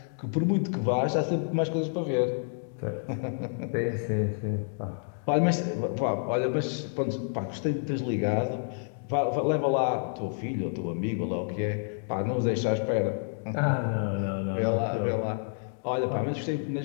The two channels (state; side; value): silent; right; digital silence